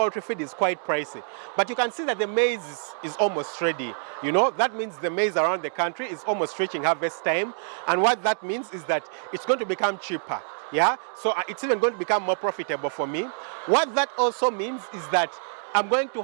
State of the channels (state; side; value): silent; left; digital silence